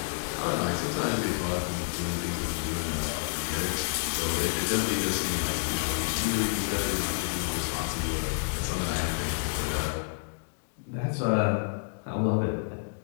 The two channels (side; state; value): right; silent; digital silence